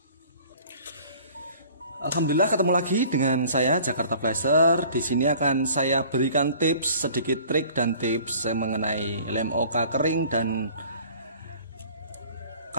Alhamdulillah ketemu lagi dengan saya Jakarta Flasher. Di sini akan saya berikan tips, sedikit trik dan tips mengenai lem OK kering dan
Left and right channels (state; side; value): inverted; both; correlation -0.50